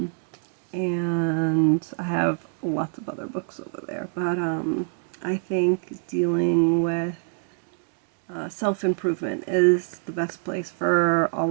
and I have lots of other books over there. But I think dealing with self improvement is the best place for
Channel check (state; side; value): silent; left; digital silence